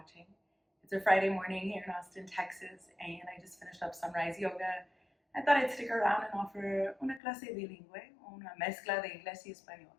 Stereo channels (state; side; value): drops out; right; at 7.2 s